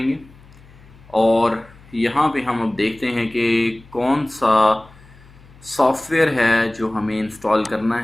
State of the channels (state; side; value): noise; left; hum, 24 dB below the sound